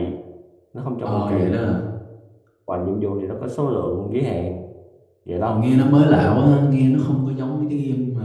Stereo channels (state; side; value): identical; both; correlation 1.00